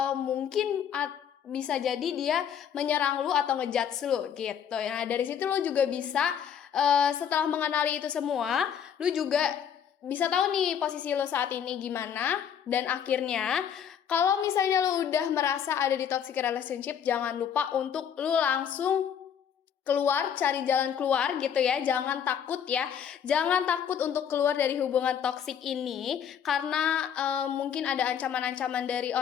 mungkin bisa jadi dia menyerang lu atau ngejudge lu gitu. Nah, dari situ lu juga bisa setelah mengenali itu semua, lu juga bisa tahu nih posisi lu saat ini gimana. Dan akhirnya kalau misalnya lu udah merasa ada di toxic relationship, jangan lupa untuk lu langsung keluar, cari jalan keluar gitu ya. Jangan takut ya. Jangan takut untuk keluar dari hubungan toksik ini karena mungkin ada ancaman-ancaman dari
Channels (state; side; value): quieter; right; 8.5 dB